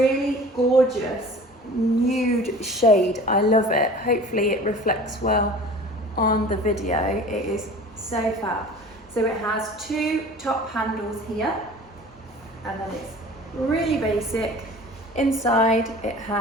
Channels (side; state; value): both; normal; correlation 0.42